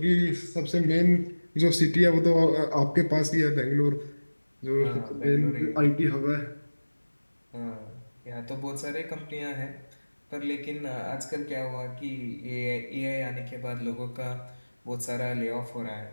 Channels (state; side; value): inverted; both; correlation -1.00